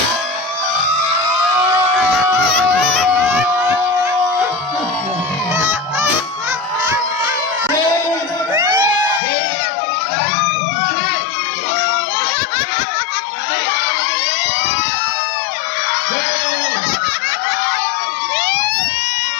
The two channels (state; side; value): drops out; right; at 9.2 s